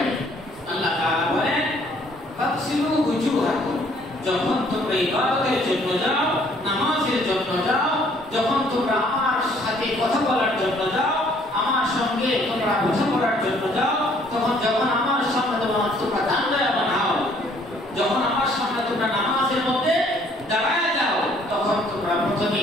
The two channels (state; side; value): normal; both; correlation 0.61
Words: আল্লাহ তাআলা বলেন তাগসিলু ওজুহাকুম, যখন তোমরা ইবাদতের জন্য যাও, নামাজের জন্য যাও, যখন তোমরা আমার সাথে কথা বলার জন্য যাও, আমার সঙ্গে তোমরা কথা বলার জন্য যাও, যখন আমার সামনে তোমরা দাঁড়ায় বানাও, যখন আমার সামনে তোমরা নামাজের মধ্যে দাঁড়ায় যাও, তখন তোমরা প্রথমে